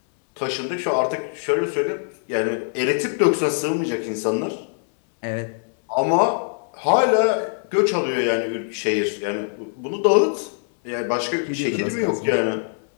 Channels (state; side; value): silent; right; 64 dB below the other